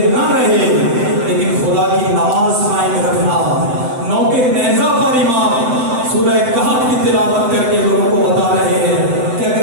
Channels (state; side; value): late; left; 7.8 ms